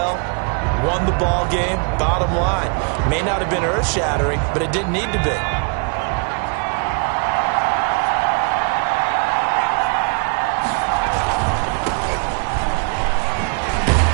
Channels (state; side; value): quieter; left; 36.8 dB